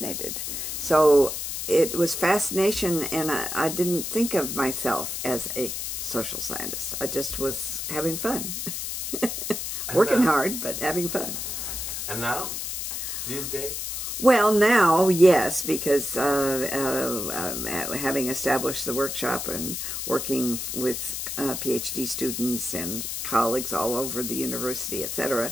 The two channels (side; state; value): left; noise; hiss, 4 dB below the sound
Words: So it was fascination, and I didn't think of myself as a social scientist. I just was having fun. Working hard, but having fun. And now? These days? Well, now, yes, because having established the workshop and working with PhD students and colleagues all over the university, etc.,